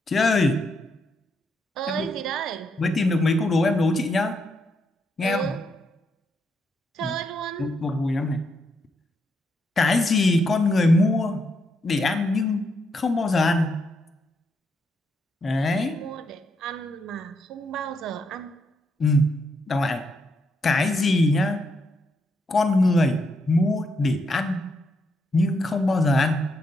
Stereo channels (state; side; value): normal; both; correlation 0.79